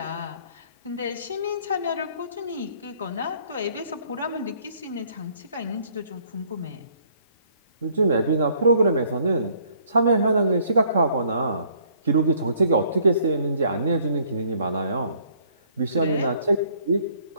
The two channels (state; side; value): inverted; both; correlation -0.63